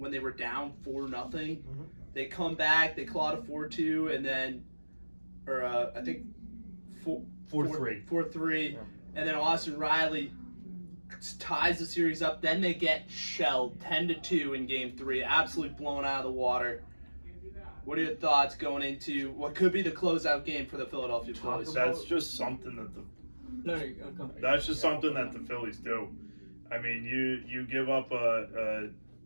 they were down 4-0. Mm-hmm. They come back, they clawed a 4-2, and then, I think 4-3. 4-3, yeah. And then Austin Riley ties the series up. Then they get shelled 10-2 in Game 3, absolutely blown out of the water. What are your thoughts going into what could be the closeout game for the Philadelphia Phillies? That's just something that No, you go. that's just something that the Phillies do. I mean, you give up a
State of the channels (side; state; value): both; inverted; correlation -1.00